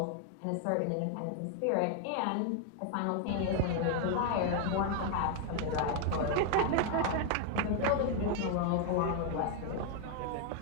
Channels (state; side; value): different; both; correlation 0.00